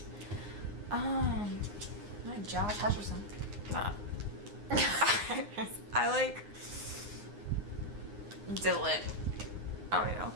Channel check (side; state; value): left; late; 9.7 ms